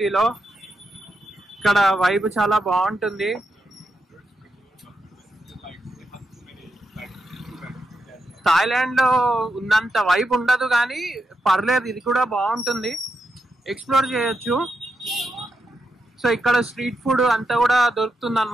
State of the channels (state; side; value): normal; both; correlation 0.85